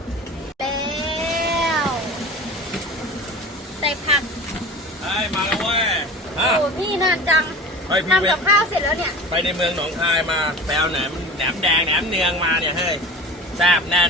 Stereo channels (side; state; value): both; normal; correlation 0.36